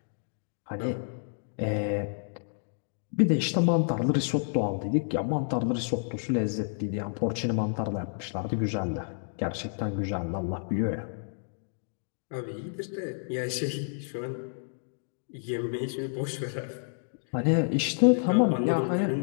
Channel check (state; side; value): silent; right; digital silence